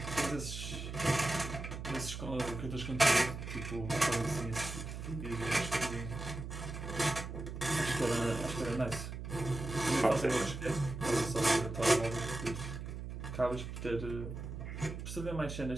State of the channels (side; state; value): right; noise; hum, 7 dB below the sound